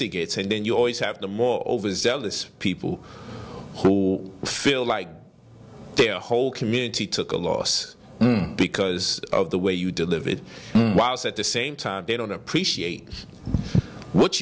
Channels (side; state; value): both; identical; correlation 1.00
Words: gets. And then you always have the more overzealous people who feel like their whole community took a loss because of the way you delivered, whilst at the same time they don't appreciate what